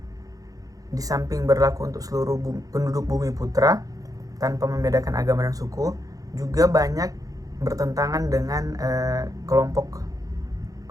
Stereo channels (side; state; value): left; late; 0.17 ms